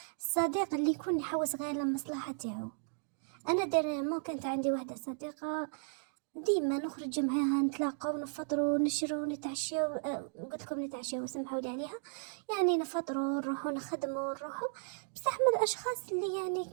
الصديق اللي يكون يحوس غير للمصلحة تاعو. انا ديريمون كانت عندي واحده صديقه ديما نخرج معاها نتلاقاو نفطروا نشروا نتعشاو، قلت لكم نتعشاو سمحوا لي عليها. يعني نفطروا نروحوا نخدموا نروحوا. بصح من الاشخاص اللي يعني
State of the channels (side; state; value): left; silent; digital silence